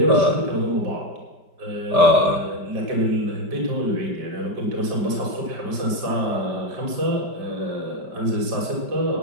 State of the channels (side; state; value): left; late; 5.1 ms